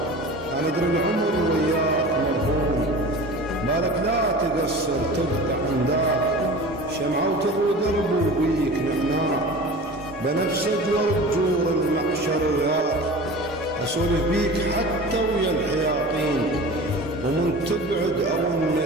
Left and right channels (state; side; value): normal; both; correlation 0.37